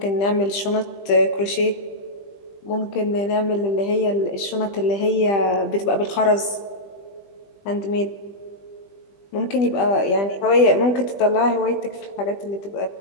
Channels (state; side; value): late; right; 20 ms